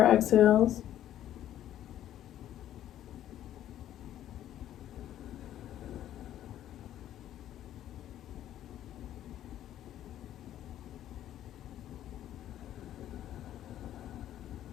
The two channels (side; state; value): right; quieter; 11.9 dB